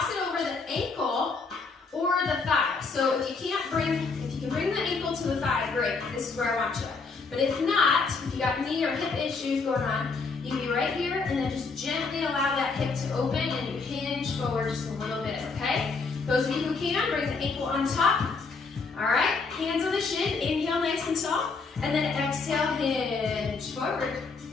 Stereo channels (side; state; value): right; quieter; 4.4 dB